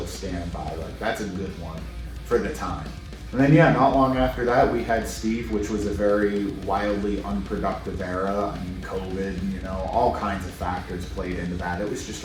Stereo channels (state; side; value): identical; both; correlation 1.00